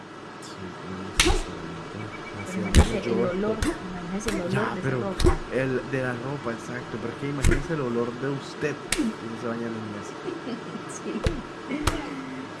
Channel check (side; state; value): both; identical; correlation 1.00